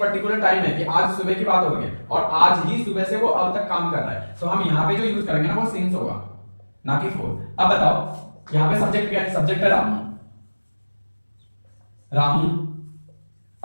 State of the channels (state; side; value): inverted; both; correlation -1.00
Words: टाइम है कि आज सुबह की बात हो रही है, और आज ही सुबह से वो अब तक काम कर रहा है, तो हम यहाँ पे जो यूज करेंगे ना वो सिंस होगा, ना कि फॉर। अब बताओ यहाँ पे सब्जेक्ट क्या है, सब्जेक्ट है रामू, रामू,